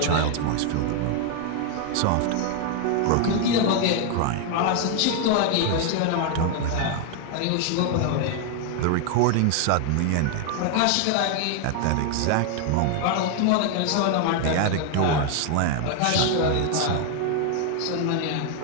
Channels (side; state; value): both; different; correlation 0.00